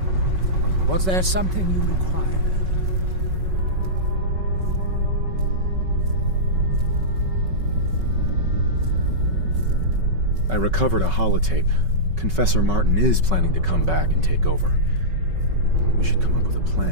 Was there something you required? I recovered a holotape. Confessor Martin is planning to come back and take over. We should come up with a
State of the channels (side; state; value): left; late; 5.3 ms